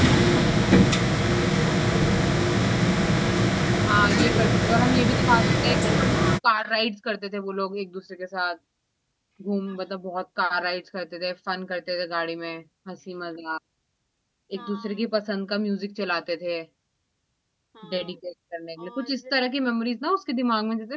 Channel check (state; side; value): identical; both; correlation 1.00